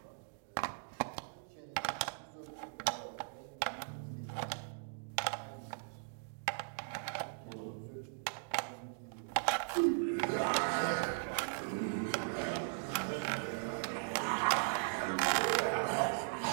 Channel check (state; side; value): silent; left; digital silence